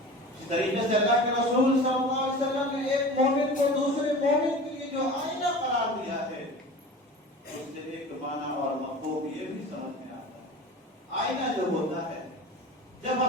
اسی طریقے سے اللہ کے رسول صلی اللہ علیہ وسلم نے ایک مومن کو دوسرے مومن کے لیے جو آئینہ قرار دیا ہے اس سے ایک معنی اور مفہوم یہ بھی سمجھ میں آتا ہے۔ آئینہ جو ہوتا ہے، جب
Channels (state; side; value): normal; both; correlation 0.36